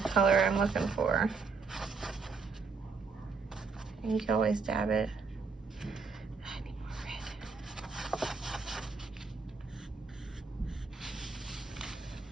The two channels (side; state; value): left; quieter; 4.7 dB